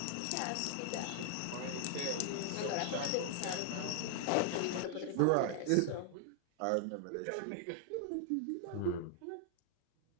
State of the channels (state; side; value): different; both; correlation 0.00